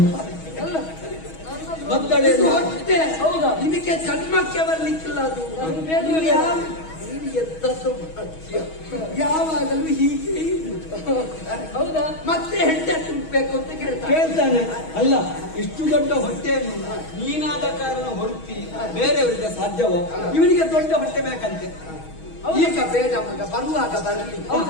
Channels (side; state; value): right; late; 6.3 ms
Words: ಅಲ್ಲ ಮದ್ದಳೆ ಇದು ಹೊಟ್ಟೆ. ಹೌದಾ? ಇದಕ್ಕೆ ಜನ್ಮಕ್ಕೆ ಬರ್ಲಿಕ್ಕಿಲ್ಲ ಅದು. ನನಗೆ ಬೇಡ. ನೀನು ಎಂತದ್ದು ಮಾಡ್ತೀಯ? ಯಾವಾಗಲೂ ಹೀಗೆ ಇರುವುದು. ಹೌದಾ? ಮತ್ತೆ ಹೆಂಡತಿ ತುಂಬಬೇಕು ಅಂತ ಕೇಳ್ತಾರೆ. ಕೇಳ್ತಾನೆ. ಅಲ್ಲ, ಇಷ್ಟು ದೊಡ್ಡ ಹೊಟ್ಟೆಯನ್ನು ನೀನಾದ ಕಾರಣ ಹೊರತಿ ಬೇರೆಯವರಿಗೆ ಸಾಧ್ಯವೋ? ಇವನಿಗೆ ದೊಡ್ಡ ಹೊಟ್ಟೆ ಬೇಕಂತೆ. ಈಗ ಬೇಡ ಮಗ, ಬರುವಾಗ ಬರಲಿ.